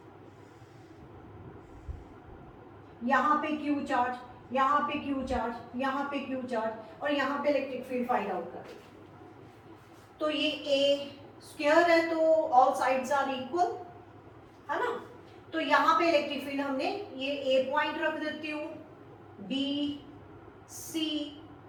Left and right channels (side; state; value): both; identical; correlation 1.00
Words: यहां पे क्यू चार्ज, यहां पे क्यू चार्ज, यहां पे क्यू चार्ज और यहां पे इलेक्ट्रिक फील्ड फाइंड आउट कर। तो ये ए स्क्वायर है तो ऑल साइड्स आर इक्वल, है ना। तो यहां पे इलेक्ट्रिक फील्ड हमने ये ए पॉइंट रख देती हूँ, B C